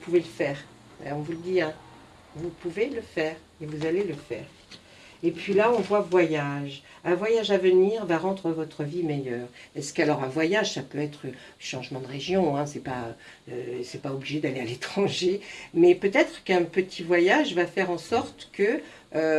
le faire. On vous le dit, hein, vous pouvez le faire et vous allez le faire. Et puis là, on voit voyage. Un voyage à venir va rendre votre vie meilleure. Est-ce qu'alors un voyage, ça peut être changement de région, hein, c'est pas obligé d'aller à l'étranger, mais peut-être qu'un petit voyage va faire en sorte que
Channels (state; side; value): identical; both; correlation 1.00